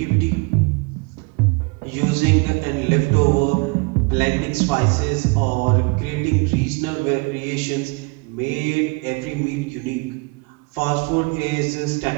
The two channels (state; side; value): quieter; left; 29.8 dB